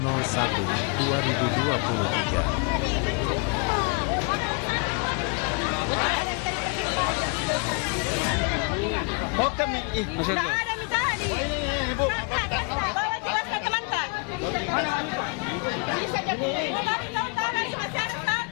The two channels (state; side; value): quieter; right; 33.2 dB